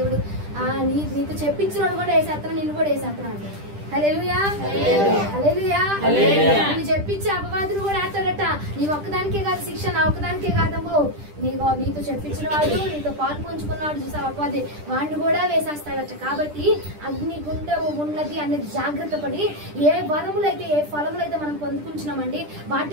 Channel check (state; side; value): late; left; 10 ms